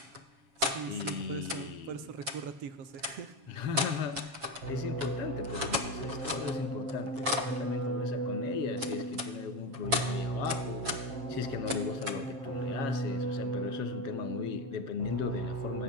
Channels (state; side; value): late; left; 7.1 ms